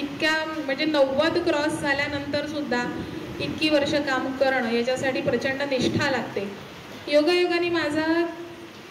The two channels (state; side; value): identical; both; correlation 1.00